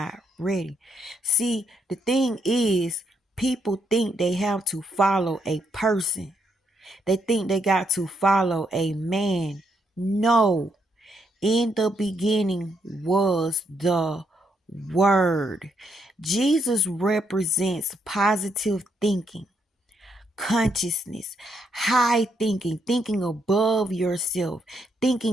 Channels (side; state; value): both; normal; correlation 0.76